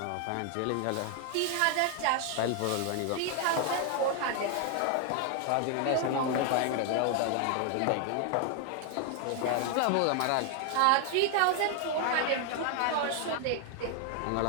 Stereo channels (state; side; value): different; both; correlation 0.00